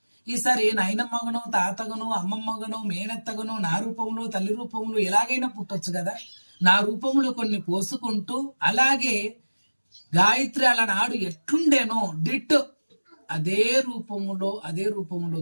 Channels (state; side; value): inverted; both; correlation -1.00